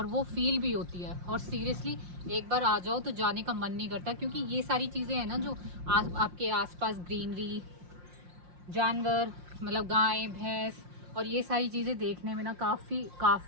वो फील भी होती है। और सीरियसली एक बार आ जाओ तो जाने का मन नहीं करता, क्योंकि ये सारी चीज़ें हैं ना जो आपके आसपास ग्रीनरी, जानवर मतलब गाय भैंस और ये सारी चीज़ें देखने में ना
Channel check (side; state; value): left; late; 5.6 ms